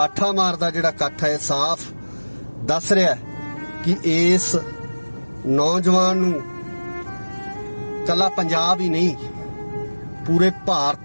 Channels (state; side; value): inverted; both; correlation -1.00